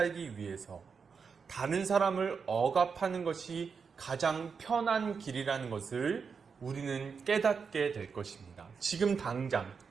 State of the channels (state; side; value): quieter; left; 5.7 dB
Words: 위해서 다른 사람을 억압하는 것이 가장 편한 길이라는 것을 우리는 깨닫게 될 것입니다. 지금